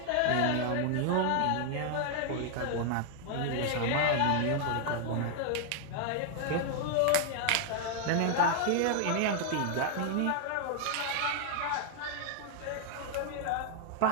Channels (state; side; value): different; both; correlation 0.00